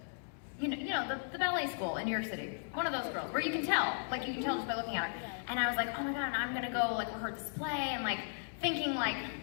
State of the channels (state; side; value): silent; right; digital silence